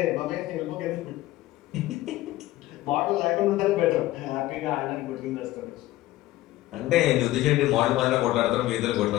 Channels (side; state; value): right; quieter; 16.3 dB